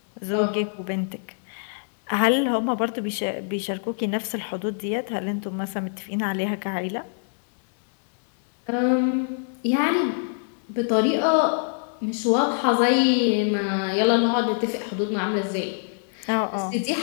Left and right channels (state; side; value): silent; right; digital silence